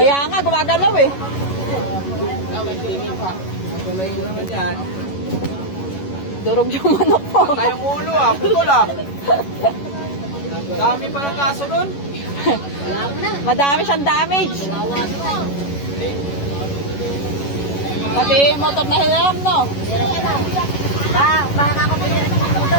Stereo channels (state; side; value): late; right; 11 ms